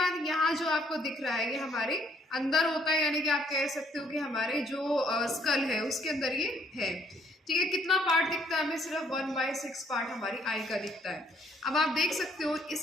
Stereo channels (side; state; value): both; normal; correlation 0.65